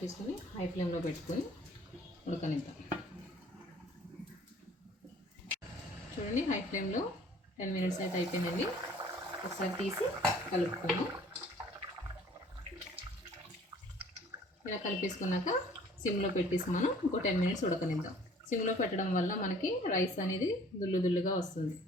హై ఫ్లేమ్లో పెట్టుకొని ఉడకనిద్దాం. చూడండి హై ఫ్లేమ్లో 10 మినిట్స్ అయితే అయిపోయిందండి. ఒకసారి తీసి కలుపుకుందాం. ఇలా కలిపేసుకున్నాక సిమ్లో పెట్టేసి మనం ఇంకో 10 మినిట్స్ ఉడకనిద్దాం. సిమ్లో పెట్టడం వల్ల మనకి రైస్ అనేది దుల్లుగా వస్తుంది.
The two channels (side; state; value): both; normal; correlation 0.53